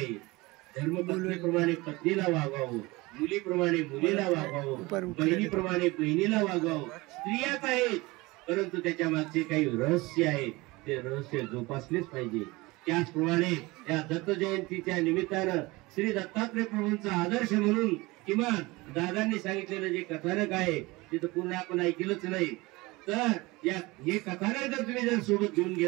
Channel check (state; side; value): quieter; left; 22.4 dB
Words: धर्मपत्नीप्रमाणे पत्नीला वागवावं, मुलीप्रमाणे मुलीला वागवावं, बहिणीप्रमाणे बहिणीला वागवावं. स्त्रियाच आहेत, परंतु त्याच्या मागचे काही रहस्य आहे, ते रहस्य जोपासलेच पाहिजे. त्याचप्रमाणे या दत्त जयंतीच्या निमित्तानं श्री दत्तात्रय प्रभूंचा आदर्श म्हणून किमान दादांनी सांगितलेलं जे कथानक आहे ते तर पूर्ण आपण ऐकलंच नाही, तर या हे कथानक जर तुम्ही जर सोबत घेऊन